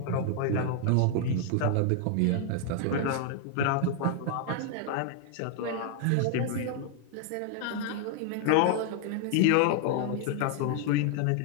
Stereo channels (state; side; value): different; both; correlation 0.00